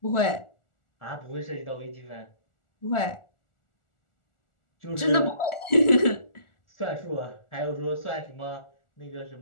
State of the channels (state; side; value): late; right; 1.4 ms